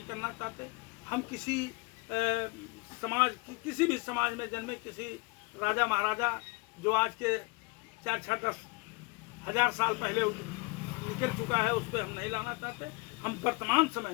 करना चाहते, हम किसी किसी भी समाज में जन्मे किसी राजा महाराजा जो आज के 4-10 हजार साल पहले निकल चुका है, उस पर हम नहीं लाना चाहते। हम वर्तमान समय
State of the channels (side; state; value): right; quieter; 28.2 dB